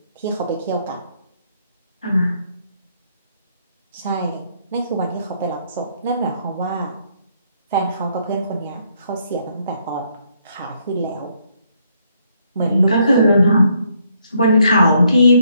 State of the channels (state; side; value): inverted; both; correlation -0.72